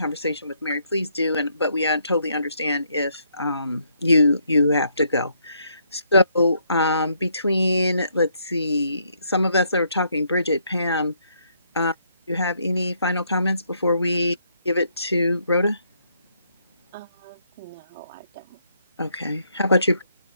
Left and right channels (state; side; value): inverted; both; correlation -0.72